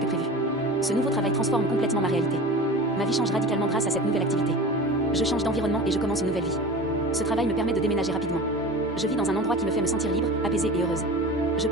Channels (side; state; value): both; normal; correlation 0.35